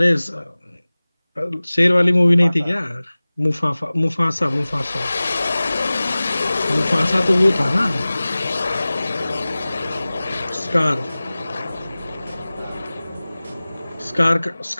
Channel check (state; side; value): inverted; both; correlation -0.98